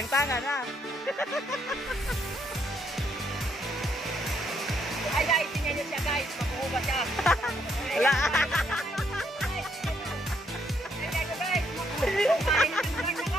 na. Ay guys, tingnan niyo siya guys. Makuha siya. Wala. Ay guys, makuha siya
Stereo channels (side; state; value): both; normal; correlation 0.73